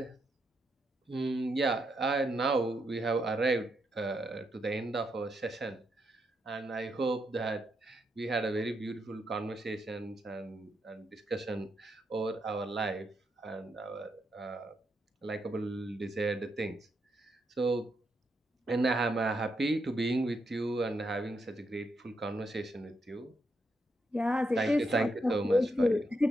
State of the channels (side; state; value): both; normal; correlation 0.81